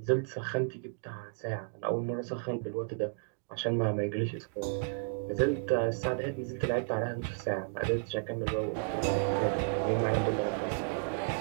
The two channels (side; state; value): left; quieter; 39.0 dB